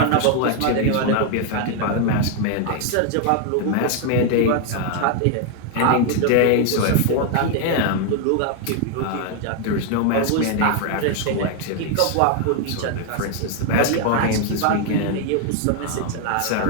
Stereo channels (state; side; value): different; both; correlation 0.00